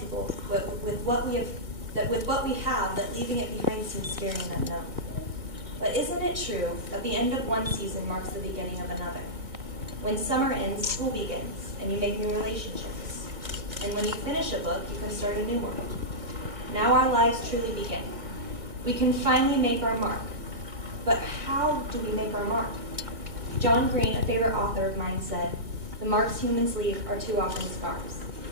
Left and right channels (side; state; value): left; late; 2.1 ms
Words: with what we have that leaving it behind seems scary and unknown. But isn't it true that the end of one season marks the beginning of another? When summer ends, school begins, and you make new relationships. And when you finish a book, you can start a new one. Now our lives truly begin. We can finally make our mark. But how do we make our mark? John Green, a favorite author of mine, said, "The marks humans leave are too often scars."